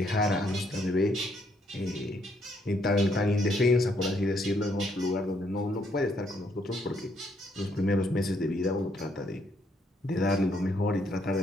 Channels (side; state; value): both; normal; correlation 0.71